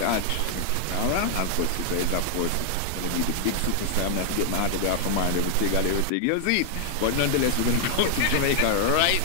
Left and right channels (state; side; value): different; both; correlation 0.00